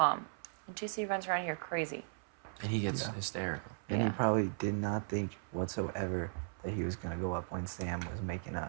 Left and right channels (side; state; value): left; silent; 53 dB below the other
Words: And JC runs around here crazy. and he gets Yeah. hysterical. And he Yeah. probably did not think whatsoever that he was going to go up when Sam was making